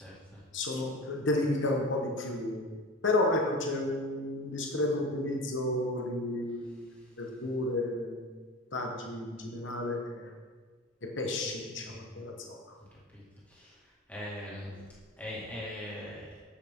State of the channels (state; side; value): normal; both; correlation 0.33